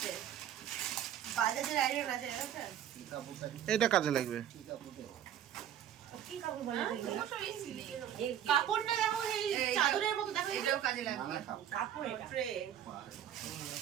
বাজাজের আয়রন আছে। এটা কাজে লাগবে। কি কাপড় বলে? কাপড়টা দেখো, এই চাদরের মতো দেখো, এটাও কাজে লাগবে। কাপড় এটা, ট্রে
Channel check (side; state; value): left; quieter; 10.3 dB